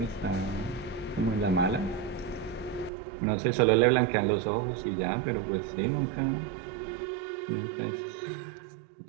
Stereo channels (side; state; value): left; drops out; at 2.9 s